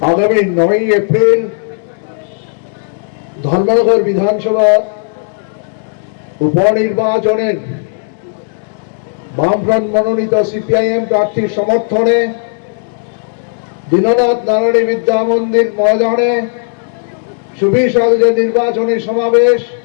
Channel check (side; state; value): right; silent; digital silence